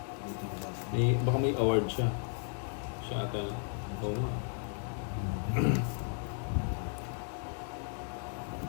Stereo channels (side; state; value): right; silent; 55 dB below the other